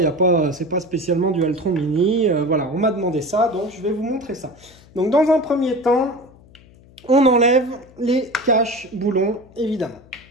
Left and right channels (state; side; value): noise; left; hum, 25 dB below the sound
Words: C'est pas spécialement Dualtron Mini. Voilà, on m'a demandé ça, donc je vais vous montrer ça. Donc, dans un premier temps, on enlève les caches boulons, évidemment.